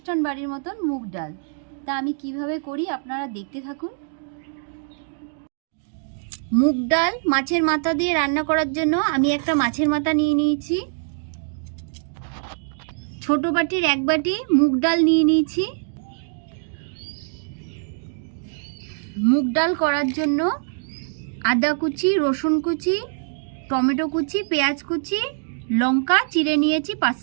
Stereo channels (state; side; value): silent; left; digital silence